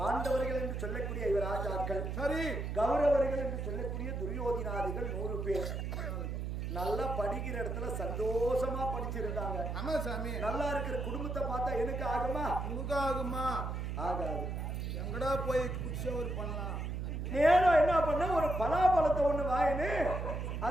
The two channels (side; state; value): right; noise; hum, 3 dB below the sound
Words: என்று சொல்லக்கூடிய இவர் ராஜாக்கள், சரி கௌரவர்கள் என்று சொல்லக்கூடிய துரியோதினாதிகள் 100 பேர் நல்லா படிக்கிற இடத்துல சந்தோஷமா படிச்சிருந்தாங்க. ஆமா சாமி. நல்லா இருக்கிற குடும்பத்தை பார்த்தா எனக்கு ஆகுமா? உனக்கு ஆகுமா? ஆகாது. எங்கடா போய் குச்சவர் பண்ணலாம். நேரம் என்ன பண்ண, ஒரு பலாப்பழத்தை ஒண்ணு வாயின்னு